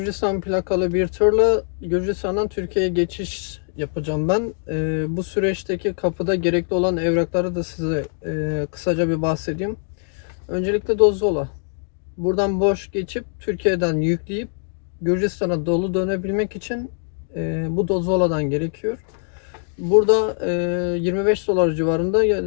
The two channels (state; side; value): silent; right; 64 dB below the other